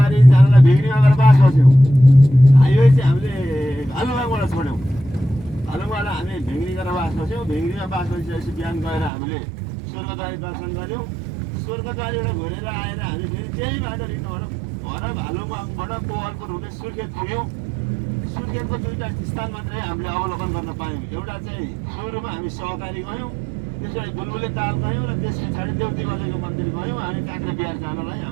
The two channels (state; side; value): drops out; left; at 9.1 s